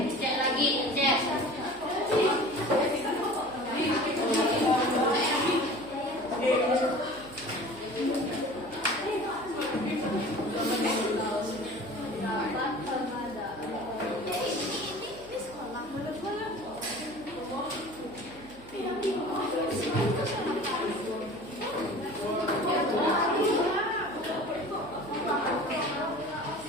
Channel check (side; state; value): right; noise; hum, 21 dB below the sound